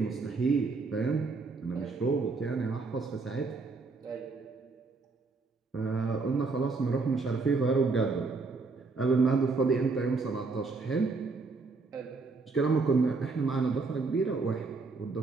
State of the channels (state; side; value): quieter; left; 4.2 dB